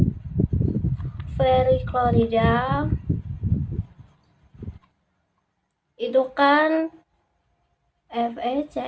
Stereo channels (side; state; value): both; identical; correlation 1.00